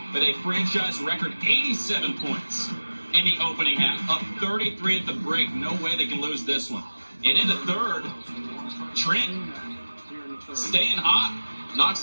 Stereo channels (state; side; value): inverted; both; correlation -1.00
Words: with a franchise record 87 points in the opening half. Up 33 at the break. No way they can lose this one. And in the third, Trent staying hot.